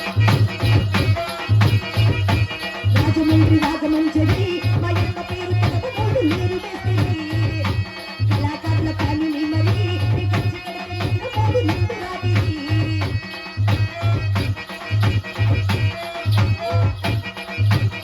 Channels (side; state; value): both; identical; correlation 1.00